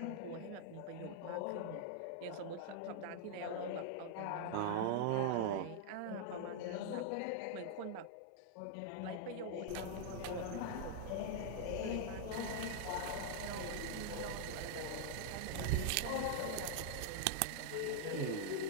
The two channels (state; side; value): different; both; correlation -0.01